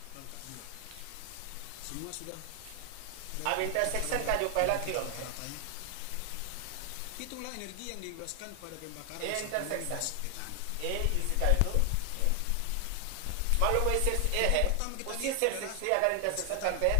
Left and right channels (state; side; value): different; both; correlation 0.00